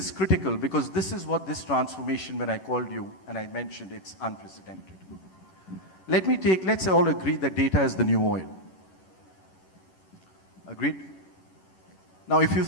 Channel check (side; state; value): right; late; 11 ms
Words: critical because this is what this transformation, when I called you and I mentioned it's unprecedented. Let's all agree that data is the new oil. Agreed? Now, if you